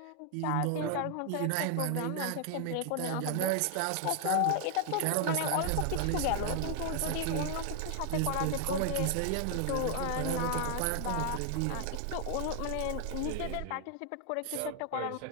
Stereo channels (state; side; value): different; both; correlation 0.00